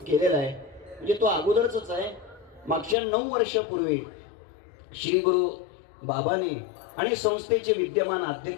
आहे. म्हणजे तो अगोदरच आहे. मागच्या 9 वर्षापूर्वी श्री गुरु बाबांनी आणि संस्थेचे विद्यमान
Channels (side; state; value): right; drops out; at 3.0 s